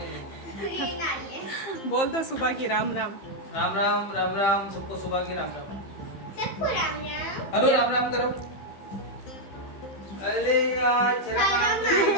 बोल दो सुबह की राम राम। राम राम राम राम सबको सुबह की राम राम। सबको राम राम। अरे राम राम करो। अरे यार तेरा काम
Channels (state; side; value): late; right; 15 ms